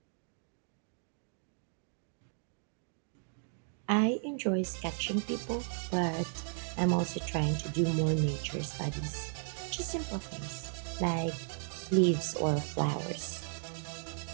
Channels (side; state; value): left; silent; 54 dB below the other